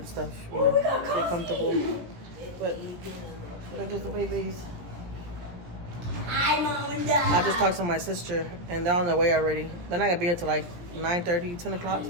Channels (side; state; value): left; late; 17 ms